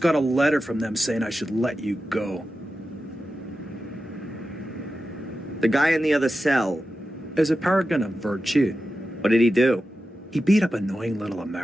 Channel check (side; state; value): both; normal; correlation 0.92